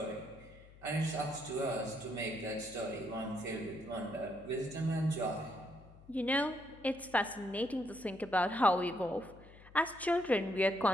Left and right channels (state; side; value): noise; left; hum, 21 dB below the sound